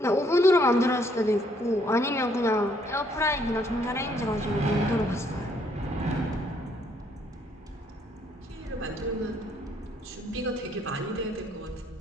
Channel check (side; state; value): both; normal; correlation 0.68